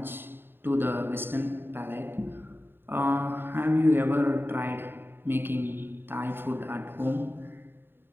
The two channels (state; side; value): late; left; 0.10 ms